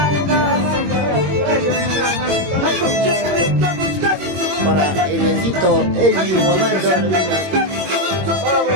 Para el bendito Elvi Guamán, toda la vida.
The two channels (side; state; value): left; late; 21 ms